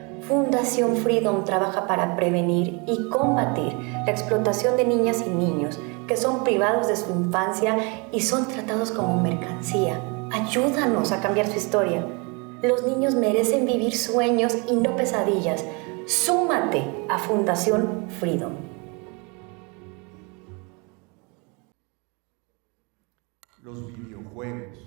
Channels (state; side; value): quieter; left; 30.9 dB